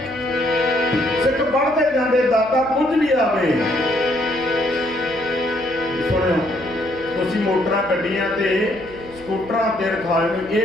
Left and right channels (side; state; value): right; noise; hum, 19 dB below the sound